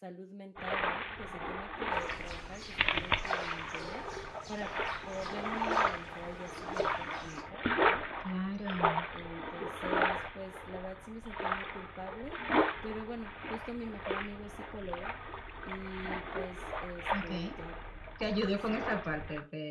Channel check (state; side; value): identical; both; correlation 1.00